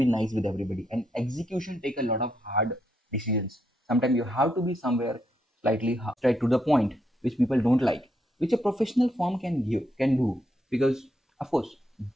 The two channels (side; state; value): both; normal; correlation 0.78